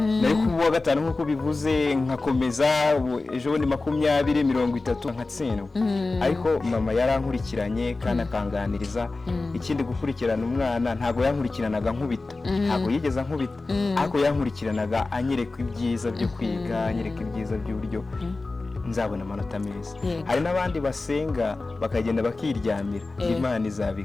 nari kuwa gatanu nkuko bivuze nkakomeza ejo ni 20 30 nkatsindwa ariko mama yarankurikiranye kandi akanganiriza ikindi gukurikirana umwana ntago yankurikiranaga nkubita ntago yigeza nkubita ariko yankurikiranaga anyereka ibyiza byo kwiga anyereka ibyiza by'uburyo nzabona amanota meza hari n'abandi basenga bakagenda bakiryamira Imana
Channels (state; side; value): quieter; right; 3.4 dB